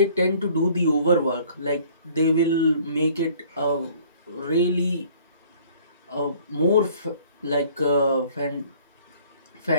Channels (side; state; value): both; inverted; correlation -0.55